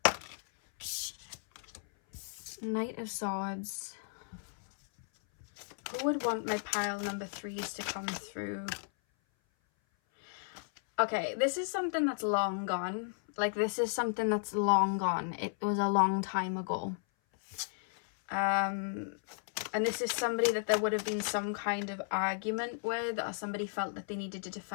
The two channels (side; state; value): right; silent; 55 dB below the other